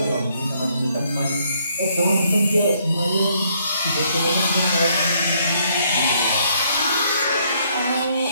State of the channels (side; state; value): both; inverted; correlation -0.69